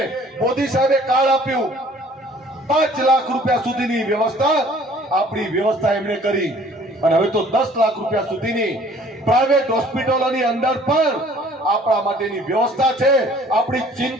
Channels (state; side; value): normal; both; correlation 0.54